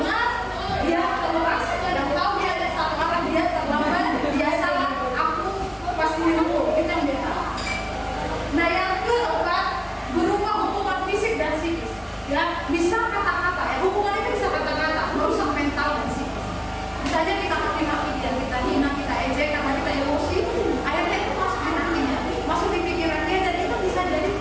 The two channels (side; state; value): both; identical; correlation 1.00